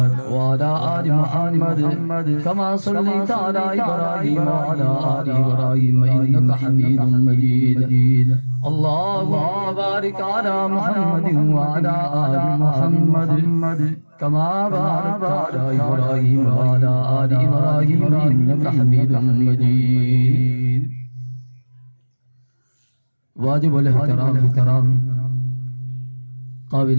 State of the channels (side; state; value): both; inverted; correlation -1.00